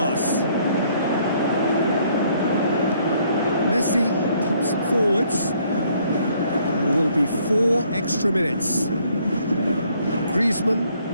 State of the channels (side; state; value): both; inverted; correlation -0.66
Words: Messi pumps it forwards. There will be 4 extra minutes. Griezmann,